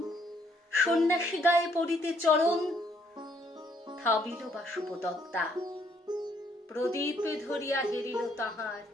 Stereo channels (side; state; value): both; normal; correlation 0.68